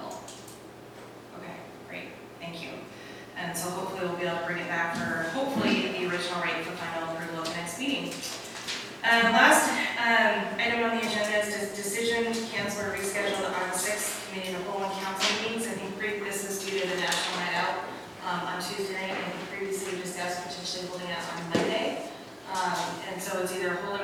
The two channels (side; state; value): both; identical; correlation 1.00